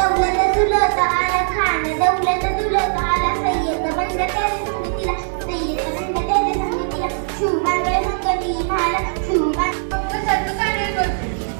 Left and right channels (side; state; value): left; silent; digital silence